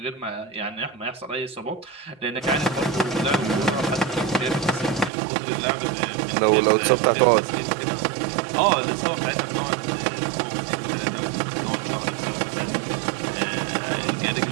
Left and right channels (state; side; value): drops out; left; at 5.1 s